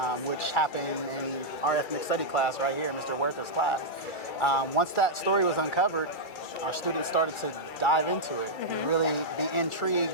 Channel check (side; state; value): right; late; 2.3 ms